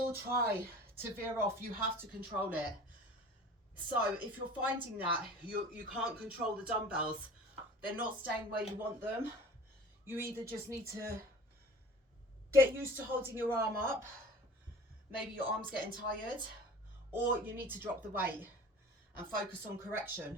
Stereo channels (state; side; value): normal; both; correlation 0.42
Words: try to veer off. You have to control it. So if you're finding that you can't control the dumbbells, they're not staying where you want them, you either just need to get used to holding your arm up, maybe your arm's getting tired, or you need to drop the weight and focus on